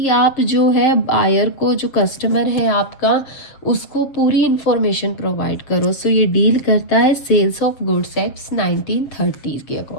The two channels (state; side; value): late; right; 7.1 ms